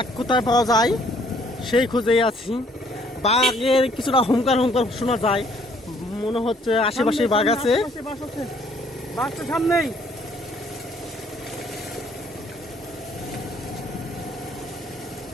কোথায় পাওয়া যায় সেই খুঁজেই আছি। বাঘের কিছুটা হুঙ্কার হুঙ্কার শোনা যায়, মনে হচ্ছে আশেপাশে বাঘ আছে। বাঘ তো সামনেই।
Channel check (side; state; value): both; normal; correlation 0.63